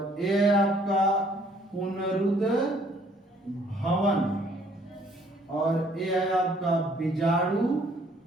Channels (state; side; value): normal; both; correlation 0.62